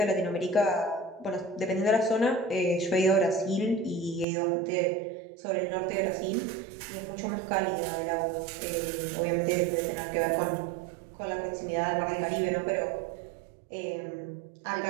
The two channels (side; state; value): left; drops out; at 4.2 s